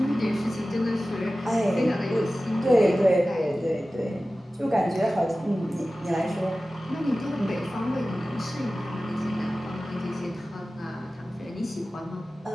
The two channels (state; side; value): normal; both; correlation 0.96